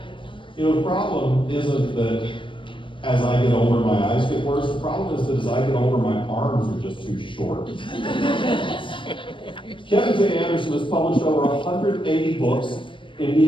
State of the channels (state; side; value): late; right; 0.25 ms